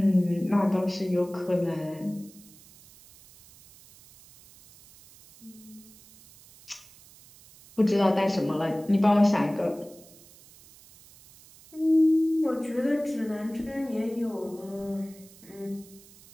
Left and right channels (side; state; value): right; noise; hiss, 24 dB below the sound